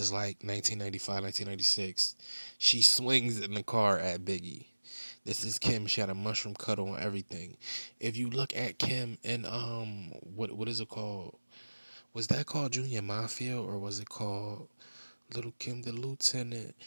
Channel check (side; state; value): both; inverted; correlation -1.00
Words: like 1995, 1996. She swings in the car at Biggie. This is Kim. She had a mushroom cut on everything. If you look at Kim in what is it called? Was that called Junior Mafia, or was it called Little Kim the Lieutenant?